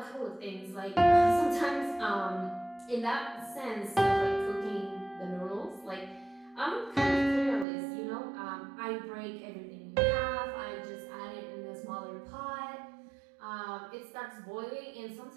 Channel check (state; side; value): drops out; left; at 7.7 s